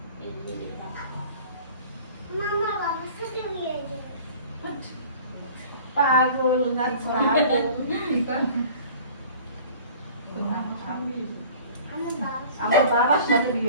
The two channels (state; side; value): inverted; both; correlation -0.45